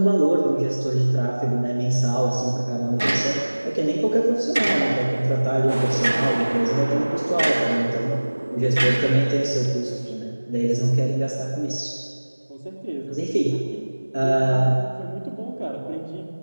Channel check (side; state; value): both; inverted; correlation -1.00